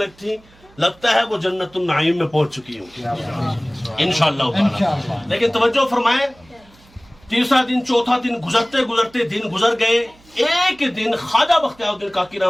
थी, लगता है वो जन्नतुन नाईम में पहुंच चुकी होंगी इंशाअल्लाह। लेकिन तवज्जो फरमाएं, तीसरा दिन चौथा दिन गुजरते गुजरते दिन गुजर गए। एक दिन ख्वाजा बख्तियारुद्दीन काकी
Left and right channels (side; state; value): right; noise; hum, 28 dB below the sound